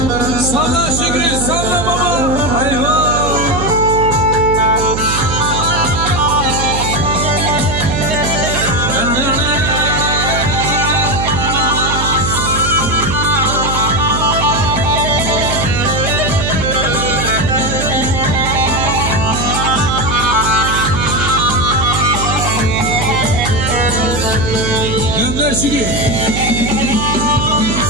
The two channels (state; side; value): noise; right; hum, 4 dB below the sound